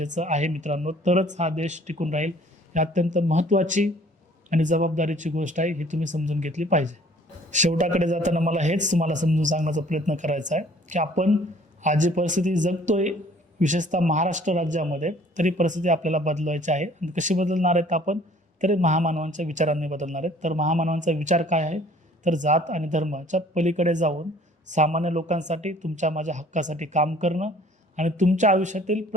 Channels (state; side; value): normal; both; correlation 0.55